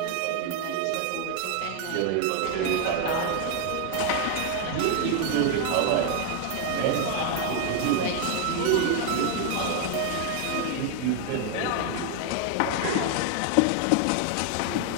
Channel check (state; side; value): different; both; correlation 0.01